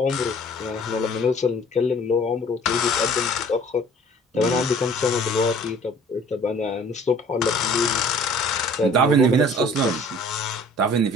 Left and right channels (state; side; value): normal; both; correlation 0.51